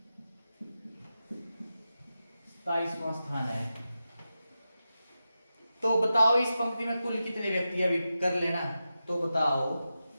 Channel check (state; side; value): inverted; both; correlation -0.91